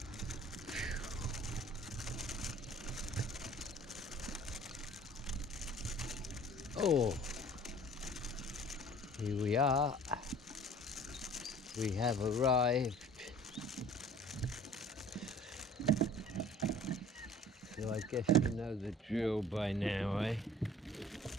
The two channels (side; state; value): both; normal; correlation 0.49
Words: Oh, here we are. We have arrived. So I guess you know the drill by now, eh?